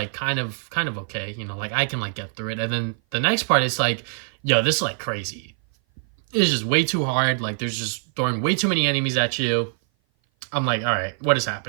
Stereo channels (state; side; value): silent; left; 57 dB below the other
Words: kind of okay, you know, like I can like get through it, and then the next part is like, yo, this is like crazy. It's just way too hard. Like, there's just throwing way too many enemies at you. I'm like, all right, what is